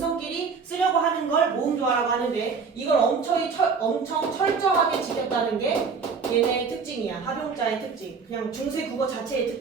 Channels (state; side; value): quieter; left; 5.3 dB